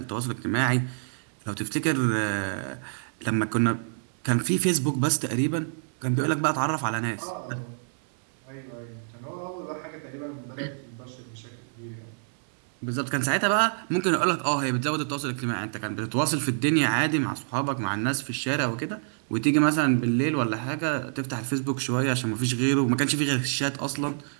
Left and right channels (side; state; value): left; silent; 60 dB below the other